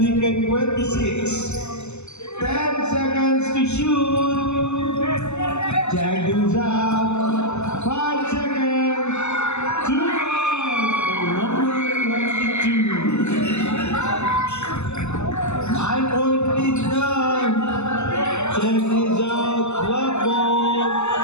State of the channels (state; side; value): late; right; 0.82 ms